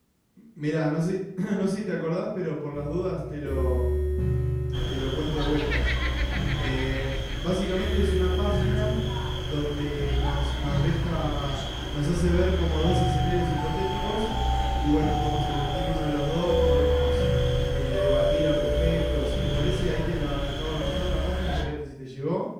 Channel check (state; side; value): identical; both; correlation 1.00